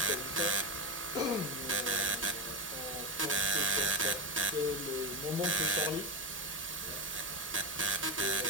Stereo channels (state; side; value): normal; both; correlation 0.15